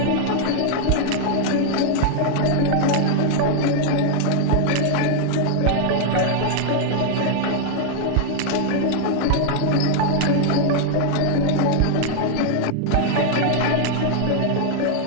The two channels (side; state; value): both; different; correlation 0.00